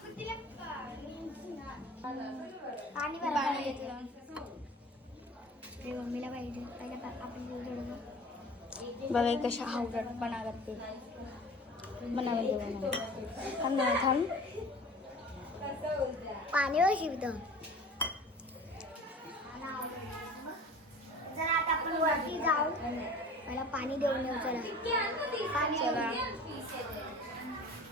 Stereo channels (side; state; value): both; normal; correlation 0.41